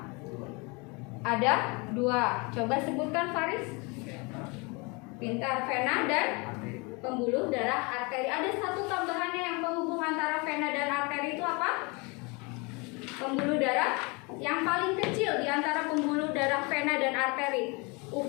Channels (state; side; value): quieter; right; 29.0 dB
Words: Ada 2. Coba sebutkan Faris. Pintar, vena dan pembuluh darah arteri. Ada satu tambahannya yang penghubung antara vena dan arteri itu apa? Pembuluh darah yang paling kecil di antara pembuluh darah vena dan arteri